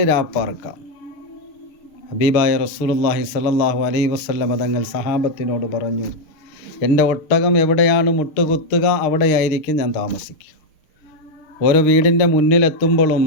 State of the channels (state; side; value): late; right; 6.5 ms